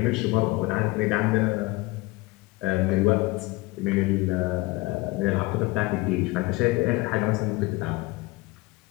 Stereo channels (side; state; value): right; quieter; 22.2 dB